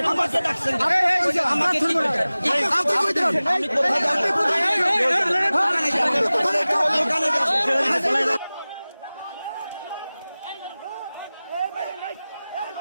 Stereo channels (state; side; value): inverted; both; correlation -0.98